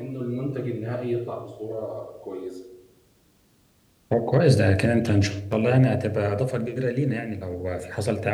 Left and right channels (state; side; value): identical; both; correlation 1.00